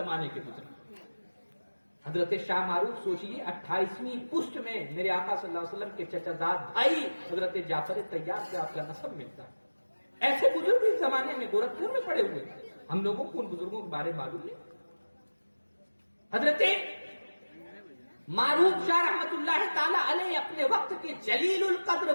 کے بزرگ۔ حضرت شاہ معروف سوچیے 28ویں پشت میں میرے آقا صلی اللہ علیہ وسلم کے چچا زاد بھائی حضرت جعفر طیار سے آپ کا نسب ملتا ہے۔ ایسے بزرگ اس زمانے میں گورکھپور میں پڑے ہوئے ہیں، ہم لوگوں کو ان بزرگوں کے بارے میں معلوم ہے۔ حضرت معروف شاہ رحمت اللہ تعالی علیہ اپنے وقت کے جلیل القدر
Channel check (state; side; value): inverted; both; correlation -1.00